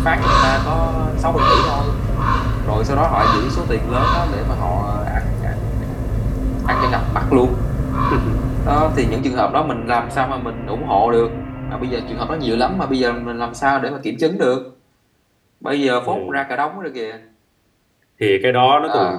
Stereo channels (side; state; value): both; identical; correlation 1.00